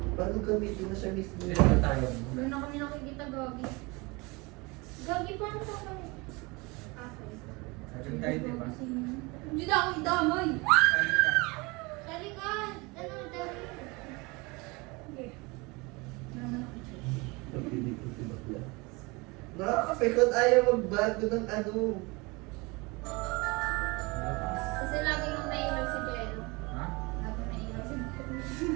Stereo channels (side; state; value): left; quieter; 25.9 dB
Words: Paano gamitin na siya mismo? Dito na tayo. Doon na kami nakikita, Gagi. Gagi, paano ka kami? Sabi tayo, di ba? Hindi na ako idamay. Sabi ka. Dali ka. Ano, dali. Okay. Nakakapikon, ayaw magbago ng ano. Kasi lagi nung nailaw si Jello. Ha? Lagi nailaw si Jello.